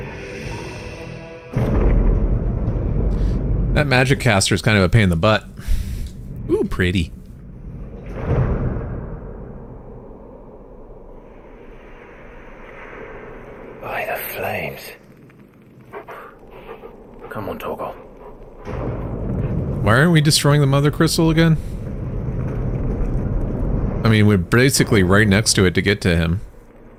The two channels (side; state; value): both; identical; correlation 1.00